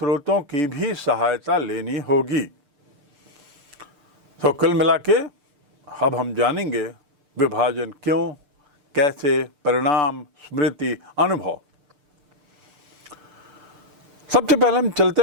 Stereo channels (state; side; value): late; left; 6.8 ms